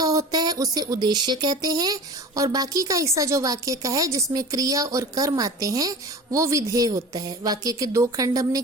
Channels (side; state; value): both; normal; correlation 0.36